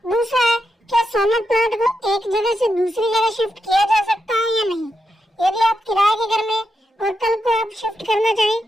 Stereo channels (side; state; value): both; normal; correlation 0.85